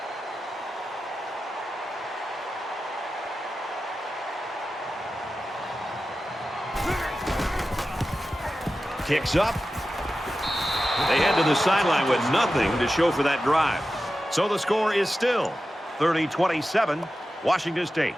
Kicks up. They head to the sideline with nothing to show for that drive. So the score is still 30-27, Washington State.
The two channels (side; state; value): both; normal; correlation 0.93